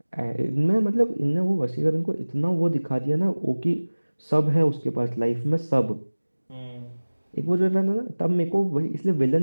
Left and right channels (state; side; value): inverted; both; correlation -1.00